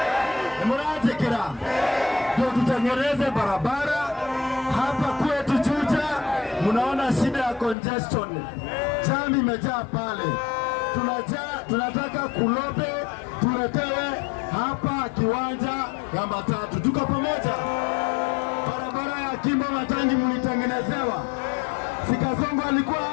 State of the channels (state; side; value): drops out; right; at 7.8 s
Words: Nimuratekera. Ndio tutengeneze barabara hapa kwetu Juja. Mnaona shida ya congestion, jam imejaa pale. Tunataka Kulobe tuletewe hapa kiwanja ya matatu. Tuko pamoja? Barabara ya Kimbo Matangi mlitengenezewa. Sikasongo alikuwa